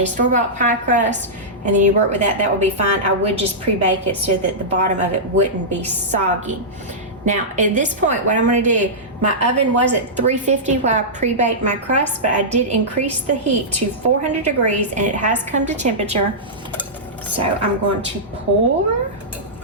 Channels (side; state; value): both; normal; correlation -0.13